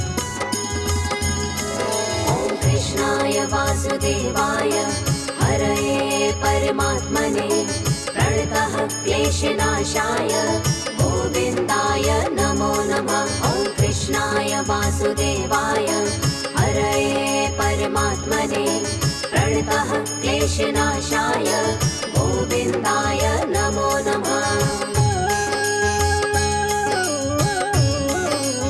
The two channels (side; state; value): both; identical; correlation 1.00